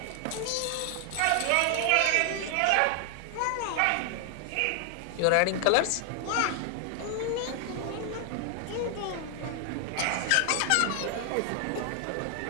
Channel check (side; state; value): both; different; correlation 0.00